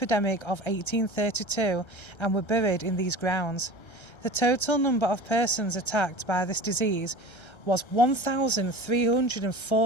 of 1832 and were buried in these grounds. The total number of persons attacked by this disease was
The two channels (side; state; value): right; late; 1.3 ms